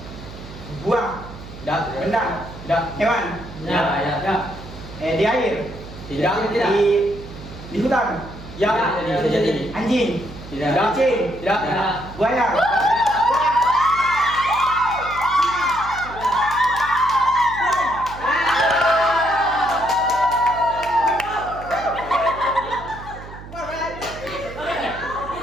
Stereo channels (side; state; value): right; noise; hum, 15 dB below the sound